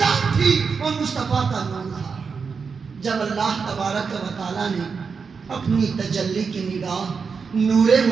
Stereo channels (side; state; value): left; quieter; 5.5 dB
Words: تھی اور مصطفیٰ کا نور تھا. جب اللہ تبارک و تعالیٰ نے اپنی تجلی کی نگاہ نور